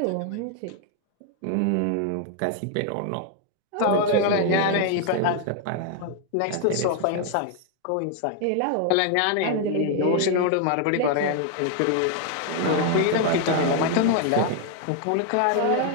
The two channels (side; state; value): both; different; correlation 0.00